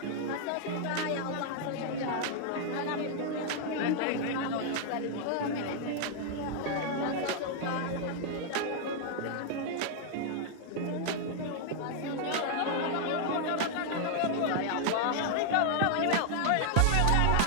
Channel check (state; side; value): different; both; correlation 0.00